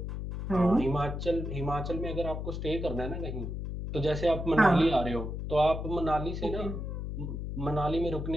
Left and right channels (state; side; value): noise; left; hum, 5 dB below the sound